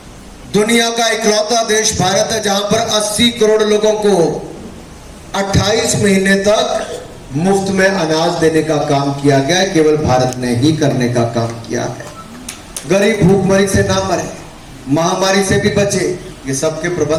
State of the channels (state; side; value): identical; both; correlation 1.00